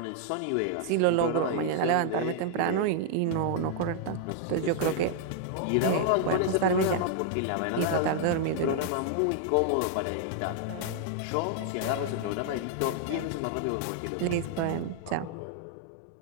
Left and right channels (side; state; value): both; different; correlation 0.00